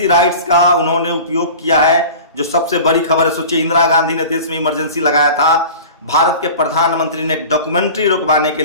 राइट्स का उन्होंने उपयोग किया है, जो सबसे बड़ी खबर है। सोचिए, इंदिरा गांधी ने देश में इमरजेंसी लगाया था, भारत के प्रधानमंत्री ने डॉक्यूमेंट्री रुकवाने के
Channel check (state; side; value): inverted; both; correlation -0.37